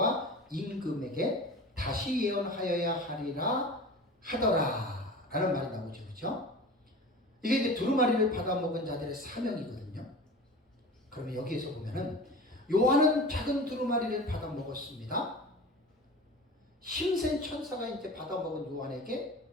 임금에게 다시 예언하여야 하리라 하더라 라는 말이 나오죠. 그렇죠? 이게 이제 두루마리를 받아먹은 자들의 사명이거든요. 그러면 여기에서 보면은 요한은 작은 두루마리를 받아먹었습니다. 힘센 천사가 이제 받아먹은 요한에게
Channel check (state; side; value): normal; both; correlation 0.35